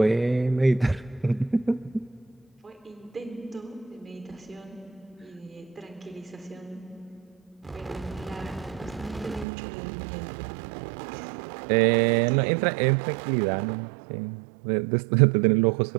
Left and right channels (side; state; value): left; drops out; at 9.5 s